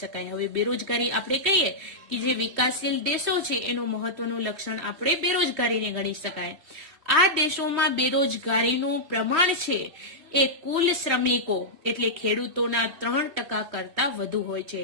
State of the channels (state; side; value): late; left; 3.1 ms